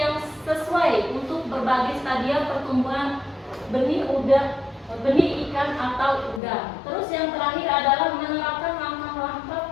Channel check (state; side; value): drops out; right; at 6.4 s